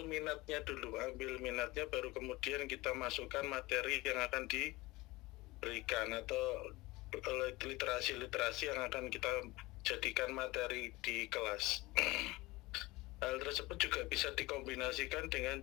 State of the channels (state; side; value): quieter; right; 21.2 dB